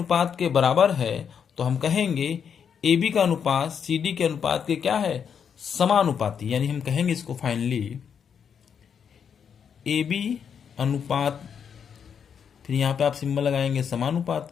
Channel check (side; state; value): right; quieter; 7.4 dB